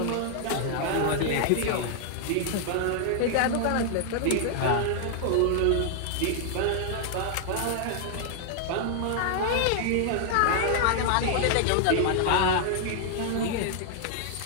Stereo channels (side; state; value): both; different; correlation 0.00